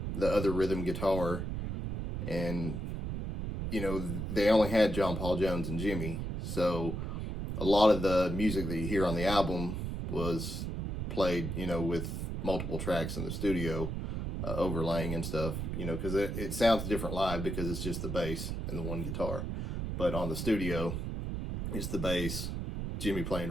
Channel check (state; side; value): noise; right; rumble, 3 dB below the sound